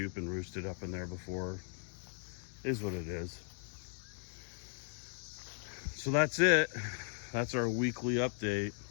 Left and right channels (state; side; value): silent; right; 53 dB below the other